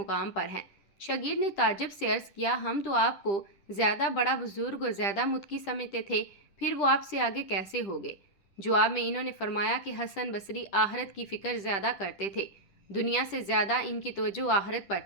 پر ہیں۔ شاگرد نے تعجب سے عرض کیا، ہم تو آپ کو زیادہ بڑا بزرگ اور زیادہ متقی سمجھتے تھے، پھر وہ آپ سے آگے کیسے ہو گئے؟ جواب میں انہوں نے فرمایا کہ حسن بصری آخرت کی فکر زیادہ کرتے تھے، دنیا سے زیادہ ان کی توجہ آخرت پر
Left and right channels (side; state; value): right; late; 10 ms